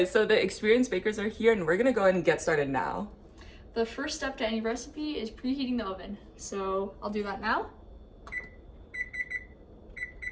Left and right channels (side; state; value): both; identical; correlation 1.00